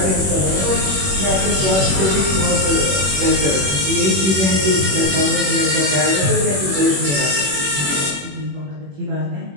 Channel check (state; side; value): late; left; 21 ms